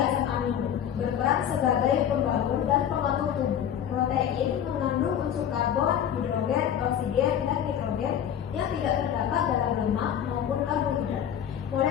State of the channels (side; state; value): right; quieter; 9.5 dB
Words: asam amino, berperan sebagai pembangun dan pengatur tubuh. Protein mengandung unsur karbon, hidrogen, oksigen, dan nitrogen yang tidak terdapat dalam lemak maupun karbohidrat.